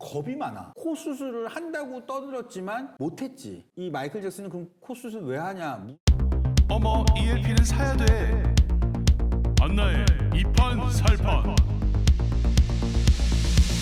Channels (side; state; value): both; identical; correlation 1.00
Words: 많아. 코 수술을 한다고 떠들었지만 못했지. 이 마이클 잭슨은 그럼 코 수술 왜 하냐? 어머 ELP는 사야 돼. 안나의 이판살판.